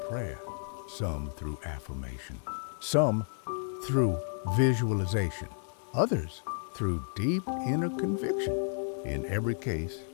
prayer, some through affirmation, some through visualization, others through deep inner conviction. In every case,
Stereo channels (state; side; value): silent; right; digital silence